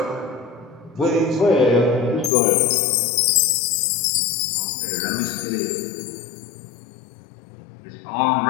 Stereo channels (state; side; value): drops out; right; at 2.3 s